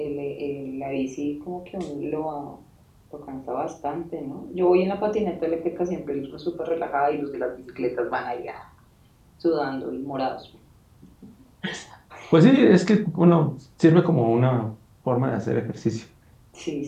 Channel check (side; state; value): both; identical; correlation 1.00